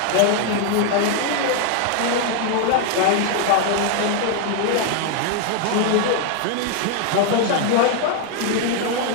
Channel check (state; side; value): different; both; correlation 0.00